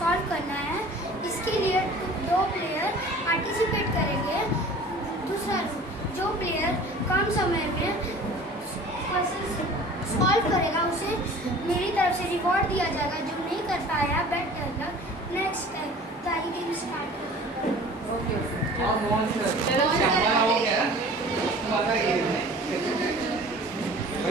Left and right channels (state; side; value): normal; both; correlation 0.44